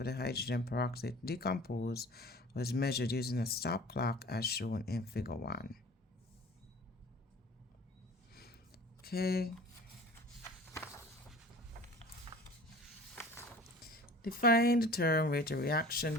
the hydrogen peroxide to decompose was measured using a stop clock as shown in Figure 1. Okay. Define the term rate of reaction,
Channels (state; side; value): normal; both; correlation 0.43